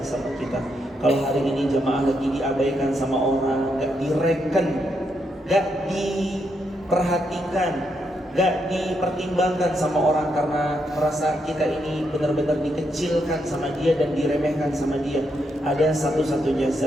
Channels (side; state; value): both; normal; correlation 0.80